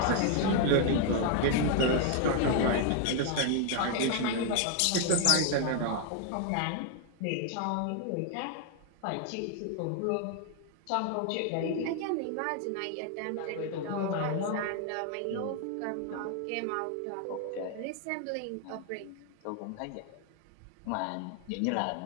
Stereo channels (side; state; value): both; different; correlation 0.00